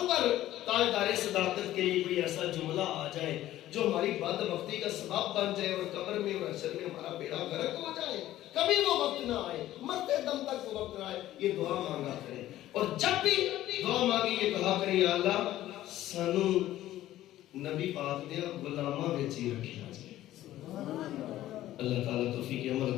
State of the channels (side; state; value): right; quieter; 14.1 dB